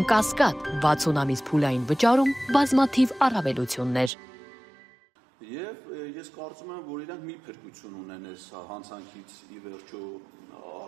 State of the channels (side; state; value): left; drops out; at 4.1 s